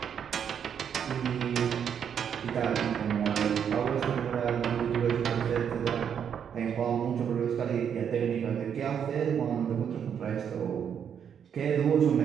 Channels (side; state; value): left; quieter; 8.1 dB